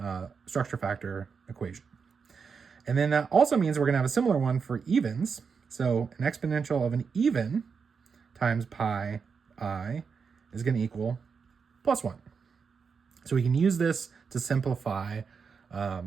structure factor equation. And then that also means we're going to have a similar one for evens. So an exponential of an even times pi I is going to equal +1. So we can use this to simplify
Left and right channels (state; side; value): quieter; left; 5.7 dB